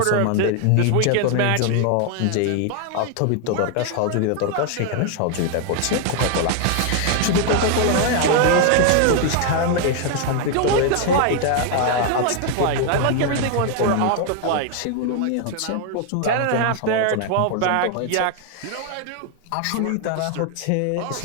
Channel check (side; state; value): both; different; correlation 0.00